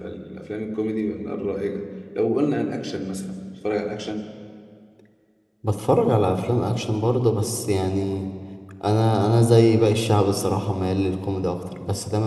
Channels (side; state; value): both; identical; correlation 1.00